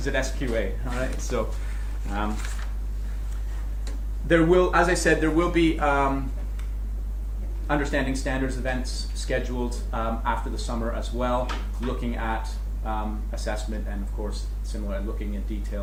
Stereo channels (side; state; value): both; identical; correlation 1.00